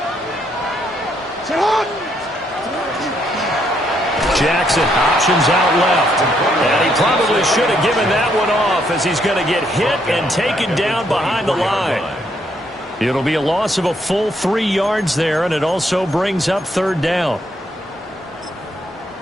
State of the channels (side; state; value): both; normal; correlation 0.73